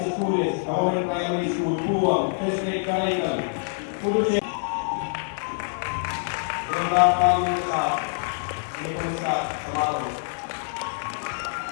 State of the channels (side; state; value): right; silent; digital silence